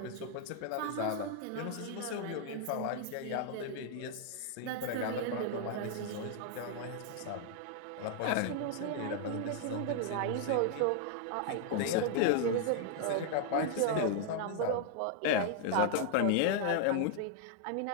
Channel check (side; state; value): both; different; correlation 0.00